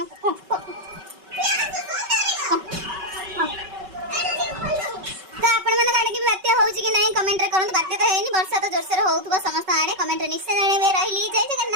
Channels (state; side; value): late; left; 5.3 ms